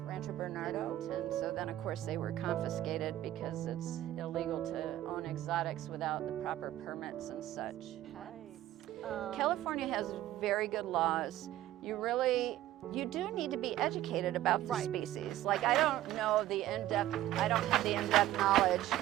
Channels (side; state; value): left; quieter; 14.0 dB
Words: Rancho Bernardo, and so then of course they were confiscated because it's illegal to own exotics without the proper permits and such. California has very good laws. You do need to be educated about the species. Like I don't have the in-depth knowledge.